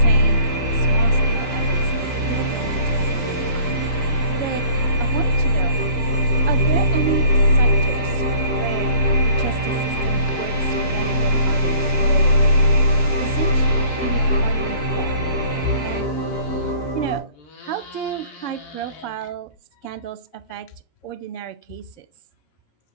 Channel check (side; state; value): right; late; 12 ms